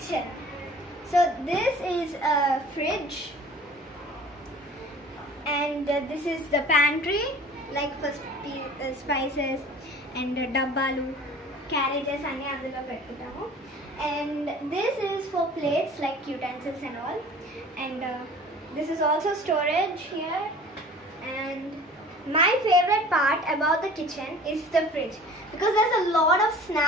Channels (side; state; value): both; normal; correlation 0.45